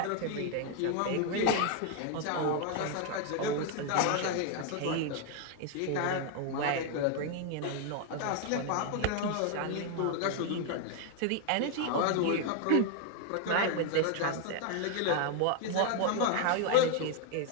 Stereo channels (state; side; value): different; both; correlation 0.00